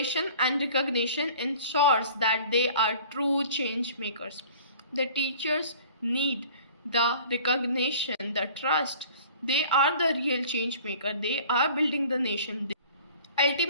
and recognition ensures that they are true change makers. The teachers need the recognition, the trust. They are the real change maker. They are building the nation.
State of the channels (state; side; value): inverted; both; correlation -0.48